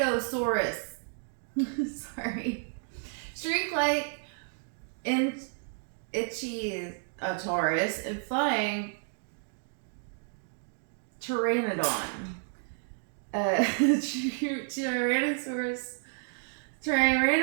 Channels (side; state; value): left; silent; 57 dB below the other